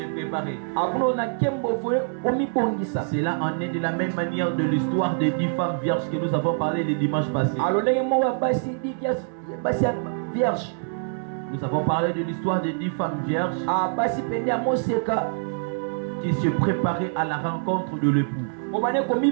préparer. Cela en est de la même manière de l'histoire des 10 femmes vierges que nous avons parlé le dimanche passé. Nous avons parlé de l'histoire des 10 femmes vierges qui se préparaient à la rencontre de l'époux.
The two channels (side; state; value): left; silent; digital silence